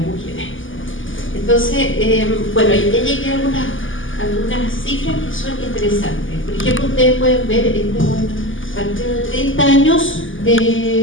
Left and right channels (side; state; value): right; late; 0.58 ms